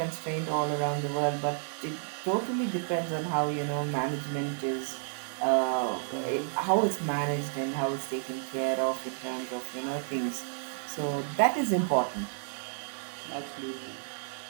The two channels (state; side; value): silent; left; digital silence